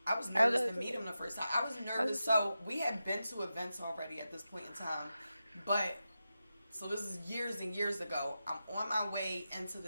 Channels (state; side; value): inverted; both; correlation -0.91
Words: I was nervous to meet him the first time. I was nervous. So we had been to events already at this point in time. But, so this is years and years ago. I'm on my way into